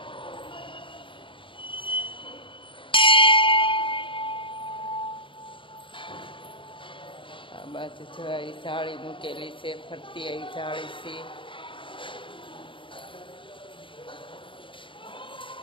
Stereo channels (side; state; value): right; late; 0.25 ms